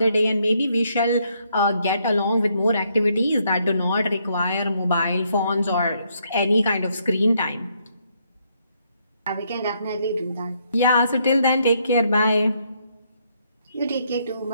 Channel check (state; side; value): inverted; both; correlation -0.73